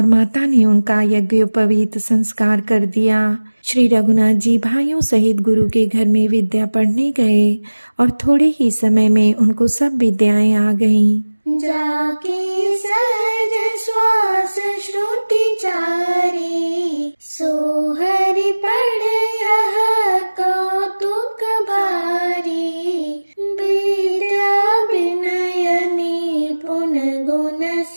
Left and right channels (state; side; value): inverted; both; correlation -1.00